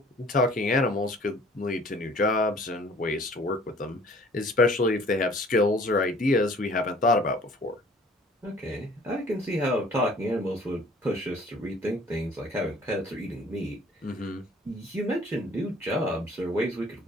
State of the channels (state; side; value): normal; both; correlation 0.53